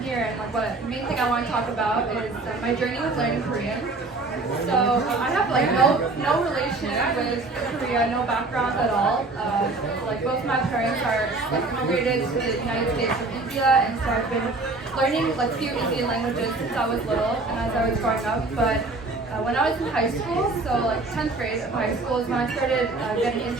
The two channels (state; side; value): quieter; left; 3.3 dB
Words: here and what the main thing I want to talk about is my journey with learning Korean. So I have no relation with Korea, no background at all. Both my parents are immigrated to the United States from India, and so I've been learning few Indian languages since I was little and as I was growing up. But when I was in high school, so 10th grade of high school is when I started getting